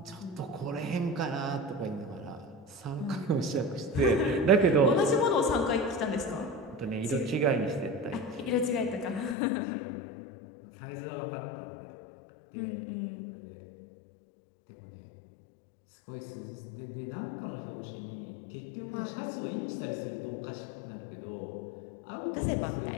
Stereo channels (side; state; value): right; drops out; at 9.3 s